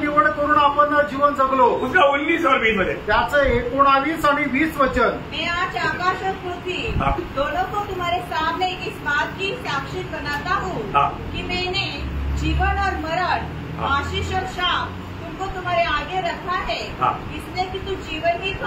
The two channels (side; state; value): both; identical; correlation 1.00